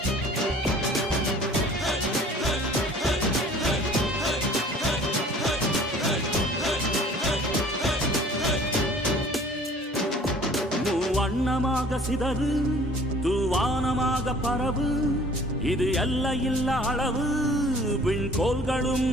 வண்ணமாக சிதறு தூவானமாக பரவு, இது எல்லையில்ல அளவு விண்கோள்களும்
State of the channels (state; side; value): normal; both; correlation 0.51